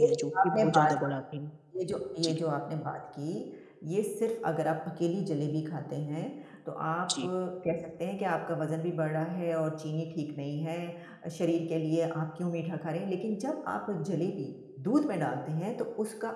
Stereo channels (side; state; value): both; identical; correlation 1.00